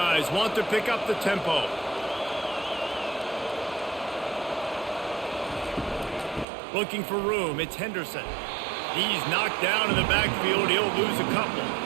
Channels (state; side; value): drops out; left; at 6.5 s